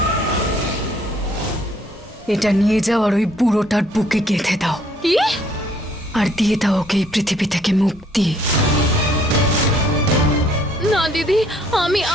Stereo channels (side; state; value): both; normal; correlation 0.63